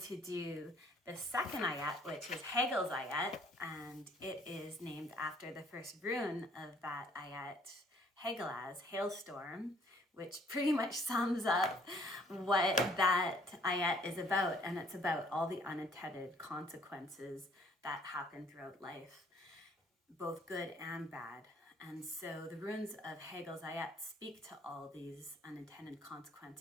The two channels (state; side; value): normal; both; correlation 0.61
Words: do the second Ætt, which is Hagal's Ætt, and it is named after the first rune of that Ætt, Hagal, hailstorm, which pretty much sums up what that Ætt is about. And it's about all the unintended consequences that happen throughout life, both good and bad. And so the runes of Hagal's Ætts speak to all these unintended